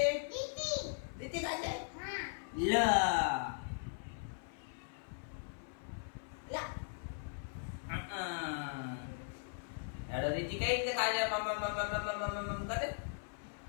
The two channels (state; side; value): silent; right; 52 dB below the other